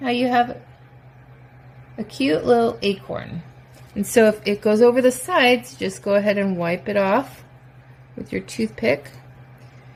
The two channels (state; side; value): identical; both; correlation 1.00